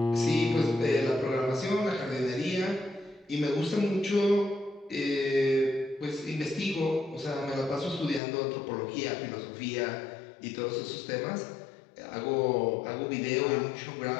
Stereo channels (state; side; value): drops out; right; at 8.2 s